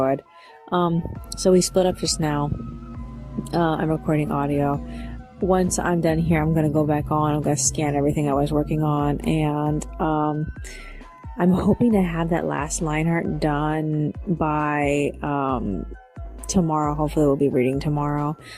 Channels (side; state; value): both; identical; correlation 1.00